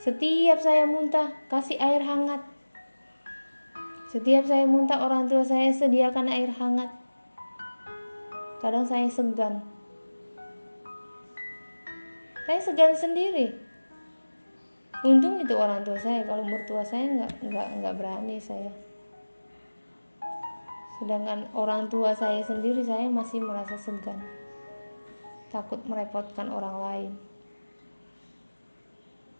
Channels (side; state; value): both; inverted; correlation -1.00